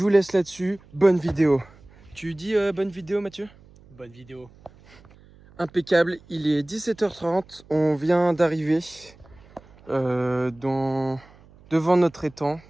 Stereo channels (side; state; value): right; noise; hum, 26 dB below the sound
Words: vous laisse là-dessus. Bonne vidéo. Tu dis bonne vidéo, Mathieu? Bonne vidéo. Impeccable, il est 17h30. On vient d'arriver devant notre étang,